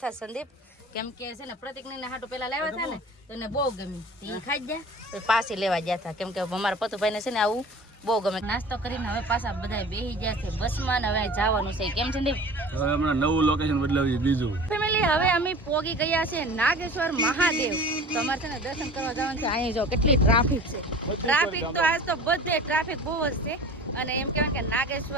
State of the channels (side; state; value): both; normal; correlation 0.41